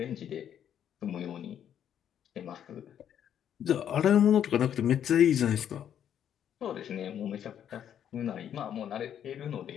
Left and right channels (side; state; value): right; quieter; 9.6 dB